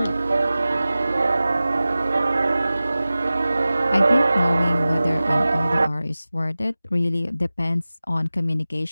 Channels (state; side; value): inverted; both; correlation -0.97